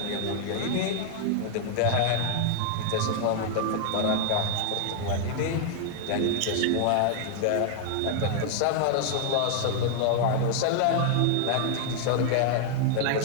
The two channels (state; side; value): different; both; correlation 0.00